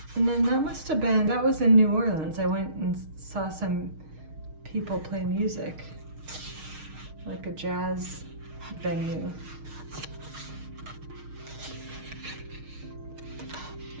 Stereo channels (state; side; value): late; left; 6.5 ms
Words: And then that was in New Orleans. I went and saw some people play music, like a jazz venue.